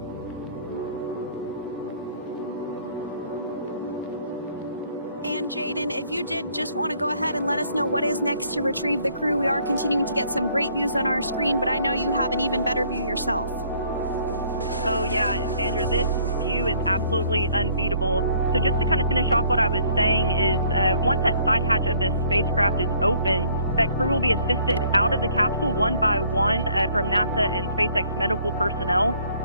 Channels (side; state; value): both; inverted; correlation -0.61